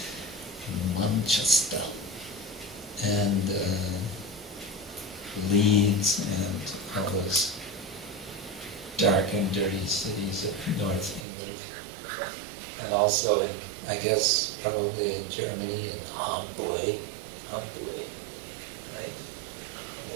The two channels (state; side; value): drops out; left; at 11.2 s